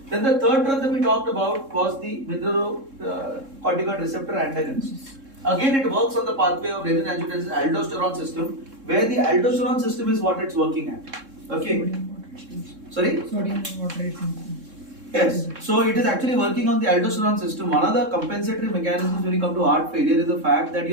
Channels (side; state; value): left; late; 3.7 ms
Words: Then the third drug that we talked about was the mineralocorticoid receptor antagonist. Again, it works on the pathway of renin-angiotensin aldosterone system, where the aldosterone system is what it's working at. Okay. Sorry? Sodium water retention. Yes, so it is actually working on the aldosterone system. One of the compensatory mechanisms when you come to heart failure is the fact that